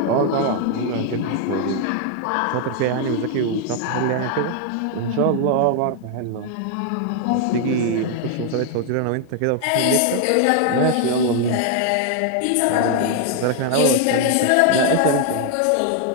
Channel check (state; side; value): different; both; correlation 0.00